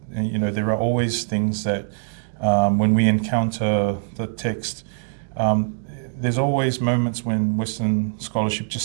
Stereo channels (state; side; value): silent; left; digital silence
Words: you know, there are always things that when we encounter the text, there's always moments when Western scholarship